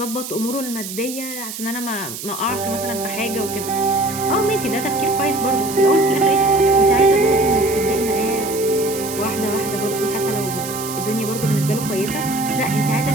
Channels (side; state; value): right; noise; hiss, 9 dB below the sound